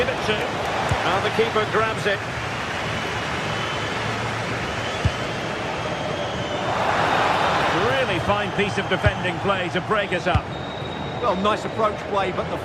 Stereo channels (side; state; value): both; identical; correlation 1.00